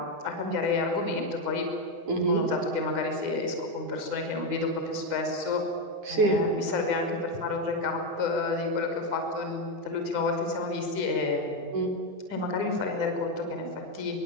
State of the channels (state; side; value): late; left; 9.9 ms